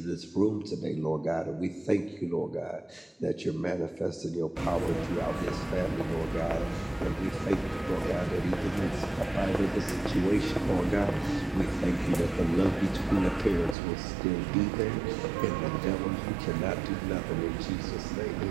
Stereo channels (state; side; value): drops out; left; at 13.8 s